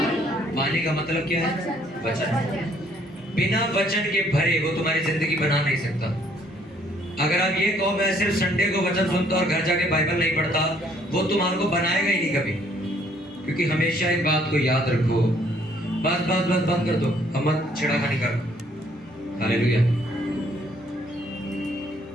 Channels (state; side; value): normal; both; correlation 0.64